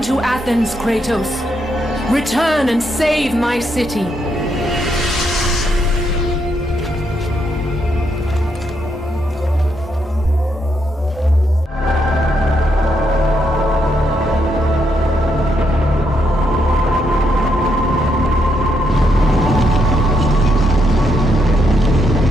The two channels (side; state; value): both; normal; correlation 0.78